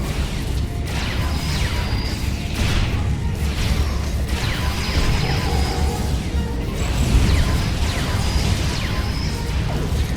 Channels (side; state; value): both; identical; correlation 1.00